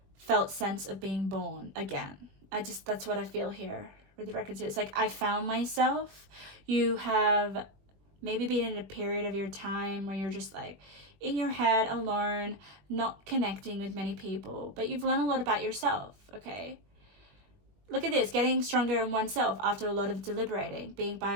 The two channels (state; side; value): late; left; 21 ms